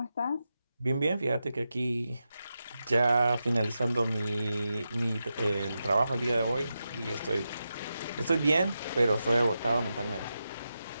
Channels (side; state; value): both; inverted; correlation -0.89